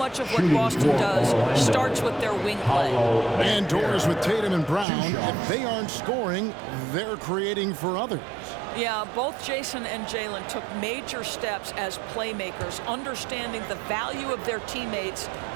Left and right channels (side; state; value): left; drops out; at 4.9 s